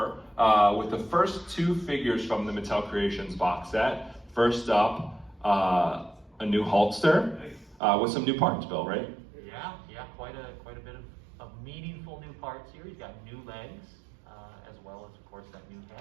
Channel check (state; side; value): drops out; left; at 7.8 s